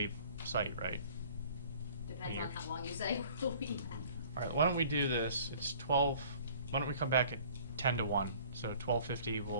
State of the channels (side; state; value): both; inverted; correlation -0.51